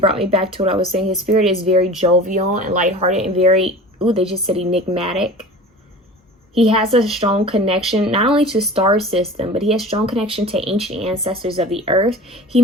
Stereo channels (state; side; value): normal; both; correlation 0.38